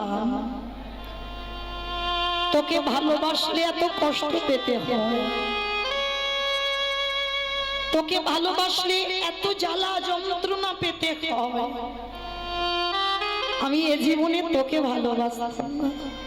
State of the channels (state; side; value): identical; both; correlation 1.00